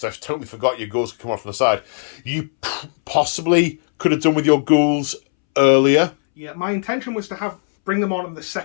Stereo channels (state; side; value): silent; right; 65 dB below the other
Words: I totally forgot your ghouls could come off from the side. You possibly could have done with your ghouls earlier. Yeah, my intention was to bring them on in the